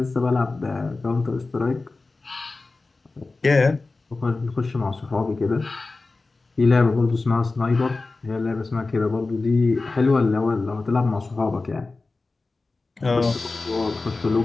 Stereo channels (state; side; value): quieter; right; 3.6 dB